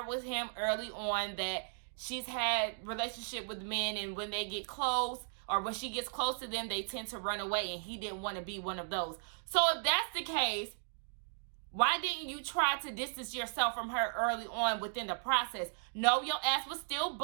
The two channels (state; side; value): silent; left; digital silence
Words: with him early on that she's had relationship with men, and when they get close, or when she gets close to them, they tend to run away, and he didn't want to be one of those. So if that's the case, why didn't you try to distance yourself from her early on within the process? No, your ass was still